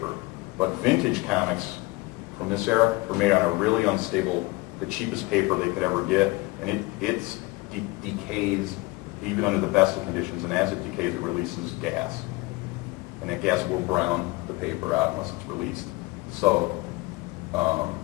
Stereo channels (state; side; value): quieter; right; 22.8 dB